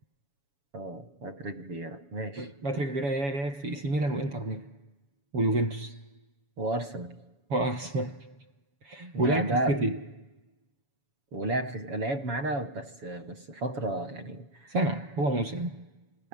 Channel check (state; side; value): late; left; 7.1 ms